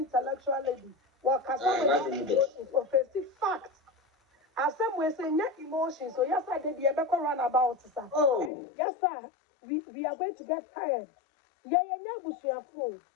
lady. What can is offensive fact. As some way say net emotions. So yes, I did the ever run about, sir. Oh. Yes, sir. We are going to get tired. Yeah, Busia fool.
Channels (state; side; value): drops out; right; at 8.5 s